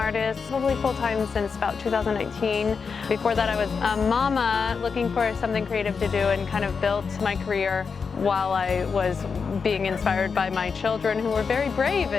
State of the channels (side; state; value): right; quieter; 5.5 dB